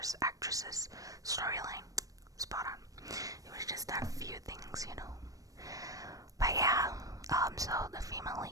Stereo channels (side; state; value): left; late; 0.17 ms